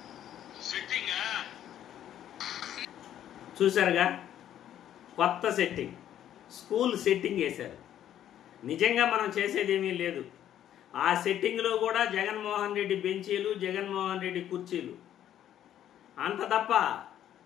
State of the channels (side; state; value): right; quieter; 11.0 dB